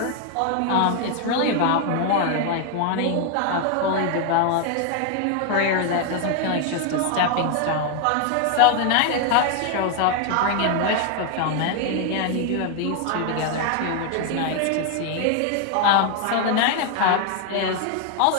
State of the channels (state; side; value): different; both; correlation 0.00